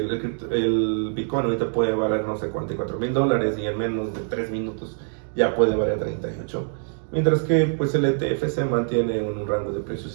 Bitcoin ahorita puede valer, no sé, $44,000 y en menos de 3 minutos ya puede valer 38. Mientras que pues el ETF se mantiene en un rango de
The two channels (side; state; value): left; silent; 62 dB below the other